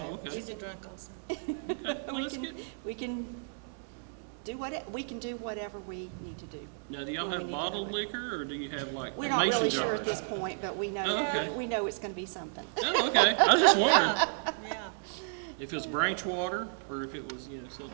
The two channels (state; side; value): silent; left; digital silence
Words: okay. She's a drunk also. Okay. Well, that's good. We can do whatever we need to do. Now, do y'all when we have need to bottled do it. liquor, or do you have like We're not mason really jars? sure at this point, but we know, Oh, okay. we know it's gonna be something. Oh, okay. I was just wondering Yeah, if it was branch water or if it was, some